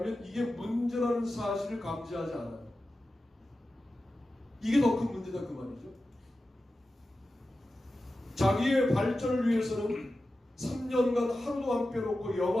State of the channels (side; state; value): both; normal; correlation 0.93